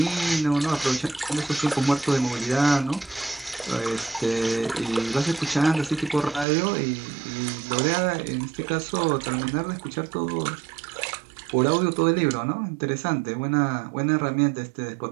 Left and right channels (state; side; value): drops out; left; at 6.5 s